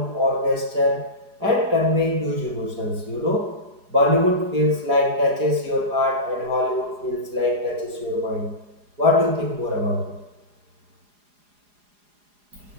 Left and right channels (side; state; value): left; late; 4.9 ms